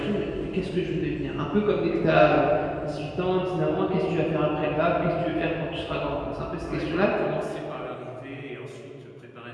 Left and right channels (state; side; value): identical; both; correlation 1.00